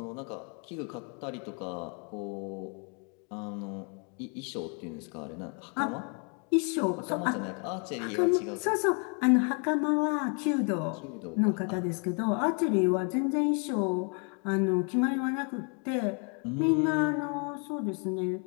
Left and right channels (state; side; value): quieter; right; 38.2 dB